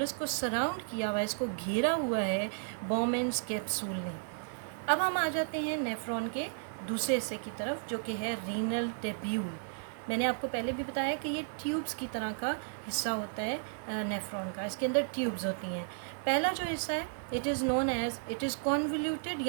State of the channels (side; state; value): left; silent; 55 dB below the other